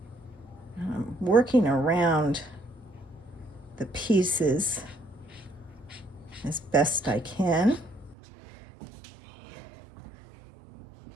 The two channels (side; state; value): left; drops out; at 8.2 s